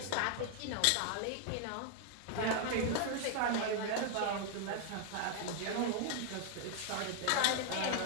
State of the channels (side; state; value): both; different; correlation 0.00